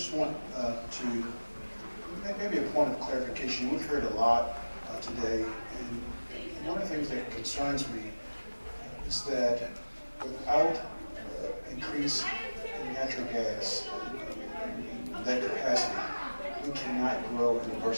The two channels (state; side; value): inverted; both; correlation -1.00